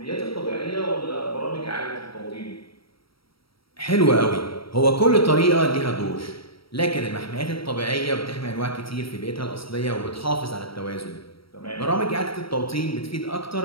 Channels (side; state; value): right; late; 0.75 ms